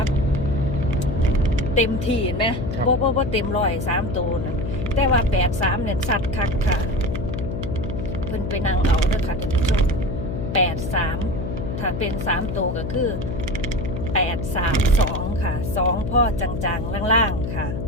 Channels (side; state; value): left; noise; hum, 4 dB below the sound